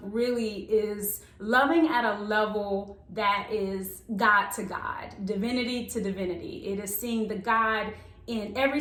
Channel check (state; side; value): identical; both; correlation 1.00